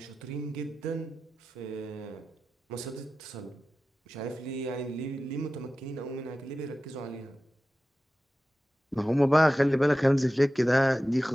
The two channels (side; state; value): both; normal; correlation 0.94